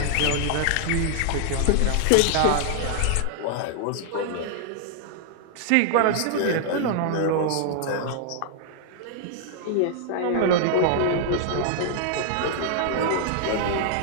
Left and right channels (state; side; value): different; both; correlation -0.01